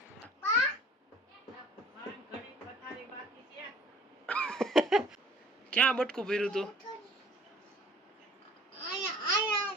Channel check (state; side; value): normal; both; correlation 0.52